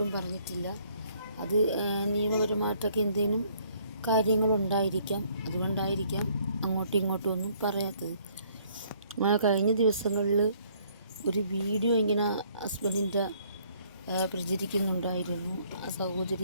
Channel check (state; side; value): inverted; both; correlation -0.64